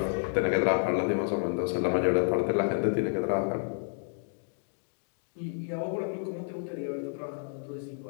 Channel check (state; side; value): silent; right; digital silence